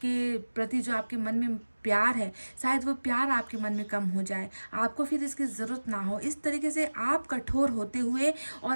के प्रति जो आपके मन में प्यार है, शायद वो प्यार आपके मन में कम हो जाए, आपको फिर इसकी ज़रूरत ना हो। इस तरीके से आप कठोर होते हुए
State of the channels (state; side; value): inverted; both; correlation -1.00